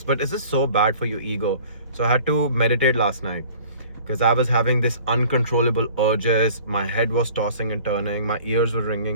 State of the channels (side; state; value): both; inverted; correlation -0.48